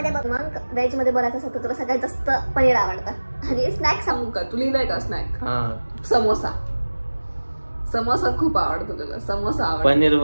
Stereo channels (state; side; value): inverted; both; correlation -1.00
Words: बघ. मग व्हेज मध्ये बोलायचं असेल तर तुला सगळ्यात जास्त पनीर आवडतं आणि स्नॅक सांगू का? तू लिहिलंय का स्नॅक? समोसा. समोसा खूप आवडतो तुला. समोसा आवडतो. पनीर